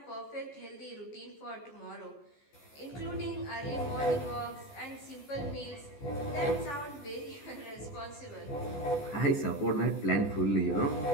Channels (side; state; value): right; late; 14 ms